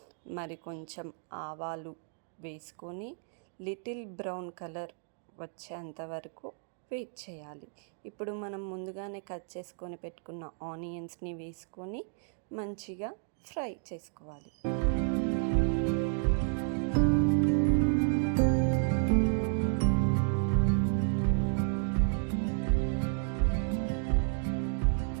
మరి కొంచెం ఆవాలు వేసుకొని లిటిల్ బ్రౌన్ కలర్ వచ్చేంత వరకు వెయిట్ చేయాలి. ఇప్పుడు మనం ముందుగానే కట్ చేసుకొని పెట్టుకున్న ఆనియన్స్ని వేసుకొని మంచిగా ఫ్రై చేసుకోవాలి.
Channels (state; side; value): silent; left; 56 dB below the other